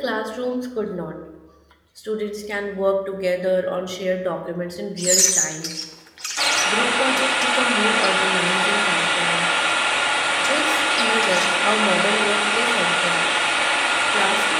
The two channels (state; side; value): identical; both; correlation 1.00